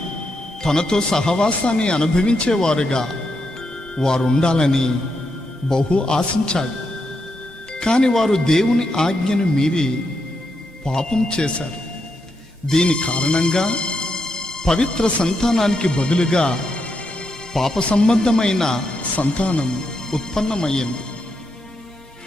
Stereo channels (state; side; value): normal; both; correlation 0.82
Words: తనతో సహవాసాన్ని అనుభవించేవారుగా వారు ఉండాలని బహు ఆశించాడు. కాని వారు దేవుని ఆజ్ఞను మీరి పాపం చేశారు. దీని కారణంగా పవిత్ర సంతానానికి బదులుగా పాప సంబంధమైన సంతానం ఉత్పన్నమయ్యింది.